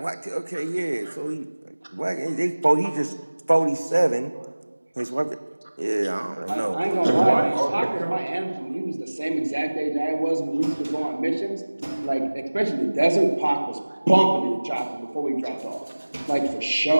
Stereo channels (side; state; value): both; inverted; correlation -1.00